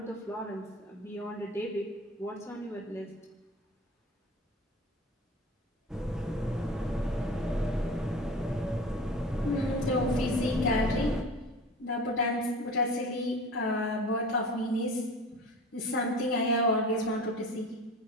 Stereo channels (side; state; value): both; normal; correlation 0.37